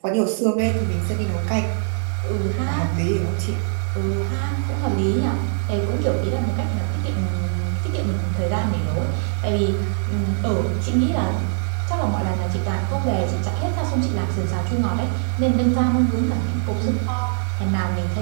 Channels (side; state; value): left; silent; digital silence